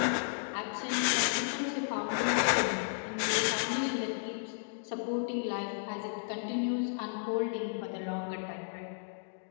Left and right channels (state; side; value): silent; right; digital silence